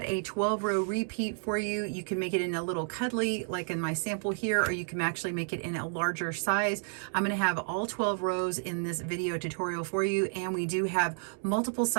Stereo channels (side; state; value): left; silent; 57 dB below the other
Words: a 12-row repeat for you. You can make it in a little cuddly like in my sample here, or you can actually make it in a larger size. I'm going to have all 12 rows in this video tutorial for you, and we do have multiple